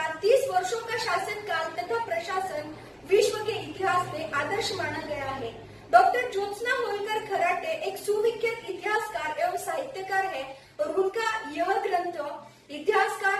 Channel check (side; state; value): both; identical; correlation 1.00